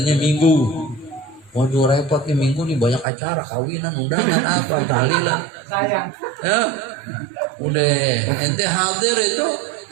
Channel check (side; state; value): left; drops out; at 3.1 s